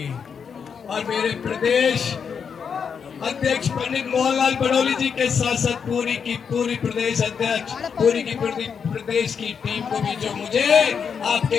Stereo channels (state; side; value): quieter; right; 6.6 dB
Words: और मेरे प्रदेश अध्यक्ष पंडित मोहनलाल बड़ौली जी के साथ साथ पूरी की पूरी प्रदेश अध्यक्ष, पूरी की पूरी प्रदेश की टीम को भी, जो मुझे आपके